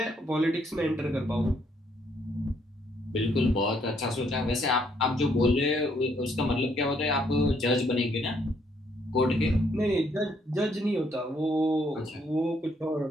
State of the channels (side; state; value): both; normal; correlation 0.70